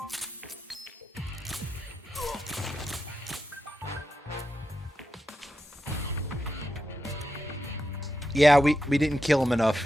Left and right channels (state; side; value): normal; both; correlation 0.88